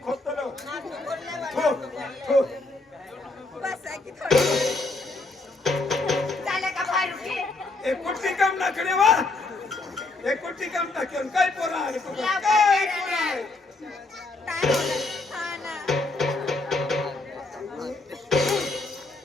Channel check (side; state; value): right; quieter; 3.2 dB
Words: खोदतो थो थो बस आहे की थोडी झालं का बारुकी एक कुट्टी काम नाखणे वा एक कुट्टी काम टाकेन काय पोरा आणि तू या काय बाई, पोरा काय होणार? हा ना.